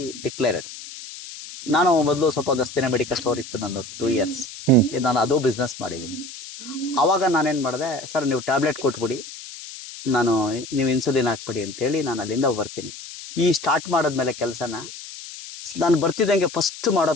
ಡಿಕ್ಲೇರ್ಡ್. ನಾನು ಮೊದಲು ಸ್ವಲ್ಪ ದಸ್ತಿನ ಮೆಡಿಕಲ್ ಸ್ಟೋರ್ ಇತ್ತು ನಂದು 2 ಇಯರ್ಸ್. ನಾನು ಅದು ಬಿಸ್ನೆಸ್ ಮಾಡಿದ್ದೀನಿ. ಅವಾಗ ನಾನೇನು ಮಾಡಿದೆ, ಸರ್ ನೀವು ಟ್ಯಾಬ್ಲೆಟ್ ಕೊಟ್ಬಿಡಿ, ನೀವು ಇನ್ಸುಲಿನ್ ಹಾಕ್ಬಿಡಿ ಅಂತೇಳಿ ನಾನು ಅಲ್ಲಿಂದ ಬರ್ತೀನಿ. ಈ ಸ್ಟಾರ್ಟ್ ಮಾಡಿದ್ಮೇಲೆ ಕೆಲಸನ ನಾನು ಬರ್ತಿದ್ದಂಗೆ ಫಸ್ಟ್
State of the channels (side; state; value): left; noise; hiss, 13 dB below the sound